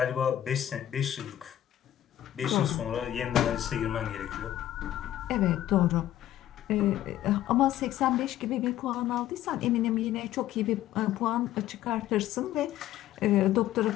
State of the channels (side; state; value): right; quieter; 12.7 dB